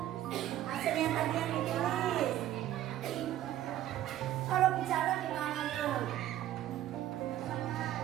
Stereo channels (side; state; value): left; quieter; 12.8 dB